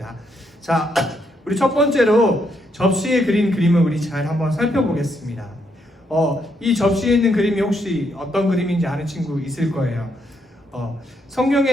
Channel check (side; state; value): both; normal; correlation 0.76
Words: 자, 우리 첫 번째로 접시에 그린 그림을 우리 잘 한번 살펴보겠습니다. 이 접시에 있는 그림이 혹시 어떤 그림인지 아는 친구 있을 거예요.